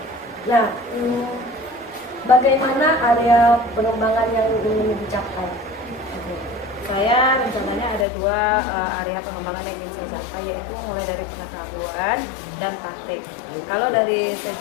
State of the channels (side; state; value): right; drops out; at 8.1 s